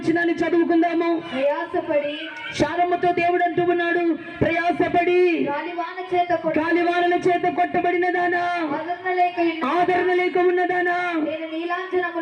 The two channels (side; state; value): both; identical; correlation 1.00